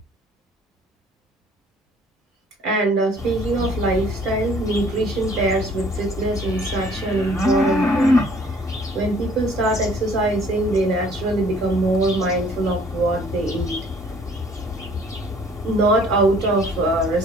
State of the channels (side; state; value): both; normal; correlation 0.57